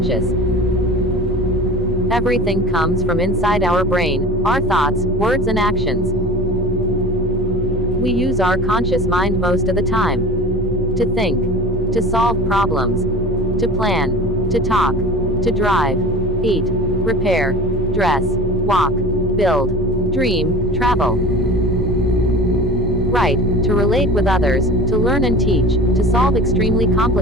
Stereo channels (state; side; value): normal; both; correlation 0.37